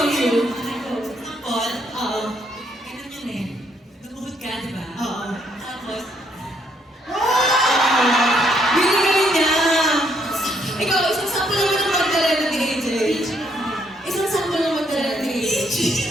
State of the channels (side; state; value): both; normal; correlation 0.72